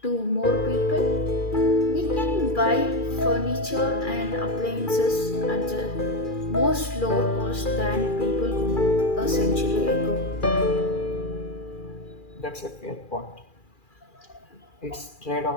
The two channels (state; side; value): late; right; 2.4 ms